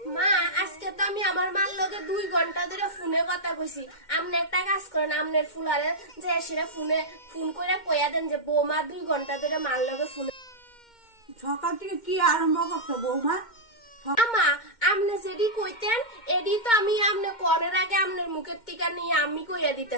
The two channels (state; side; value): late; right; 2.1 ms